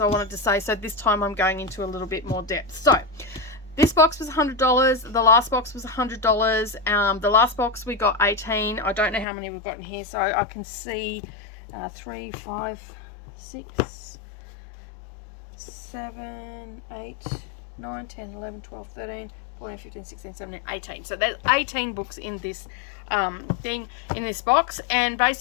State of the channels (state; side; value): drops out; right; at 9.2 s